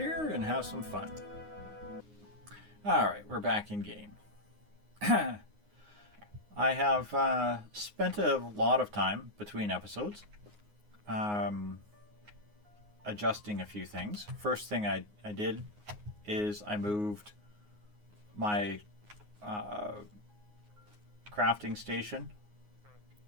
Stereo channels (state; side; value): late; left; 9.6 ms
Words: and have some fun. Alright, we're back in game. I have spent a lot of time between episodes adjusting a few things. First thing I did is I moved my crafting station